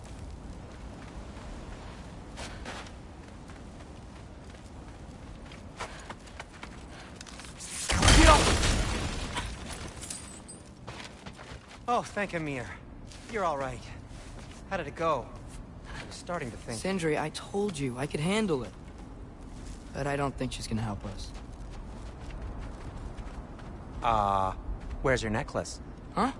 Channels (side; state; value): both; identical; correlation 1.00